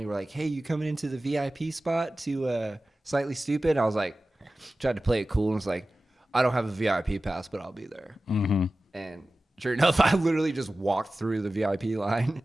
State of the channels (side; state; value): both; normal; correlation 0.96